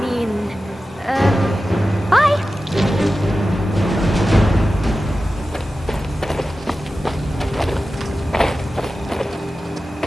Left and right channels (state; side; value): normal; both; correlation 0.94